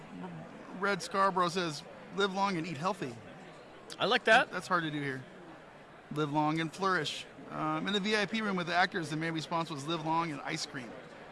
Red Scarborough says, live long and eat healthy. I like that. That's hard to do here. Live long and flourish. In the VIP room with the actors, the main response was live long and ice cream.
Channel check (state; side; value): identical; both; correlation 1.00